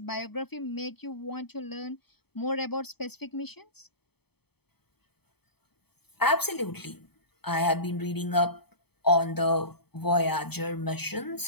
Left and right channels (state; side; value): late; right; 0.97 ms